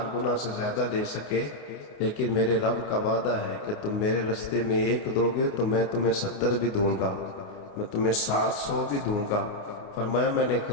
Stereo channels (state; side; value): late; right; 29 ms